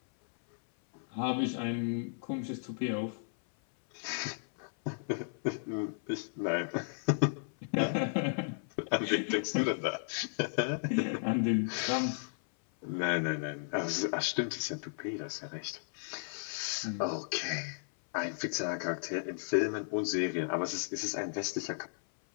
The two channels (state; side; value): silent; right; 55 dB below the other